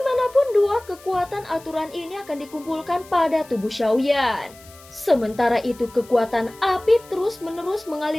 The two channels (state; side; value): noise; left; hiss, 23 dB below the sound